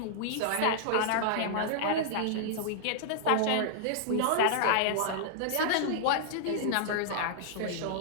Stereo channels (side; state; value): both; different; correlation -0.01